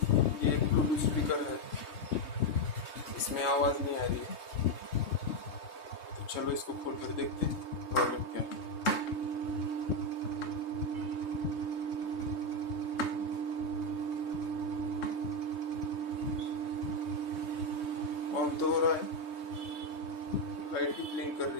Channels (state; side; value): late; right; 3.2 ms